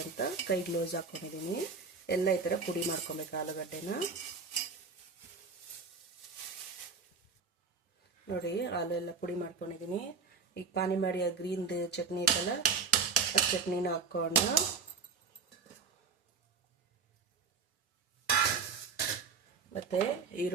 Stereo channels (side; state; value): left; quieter; 5.0 dB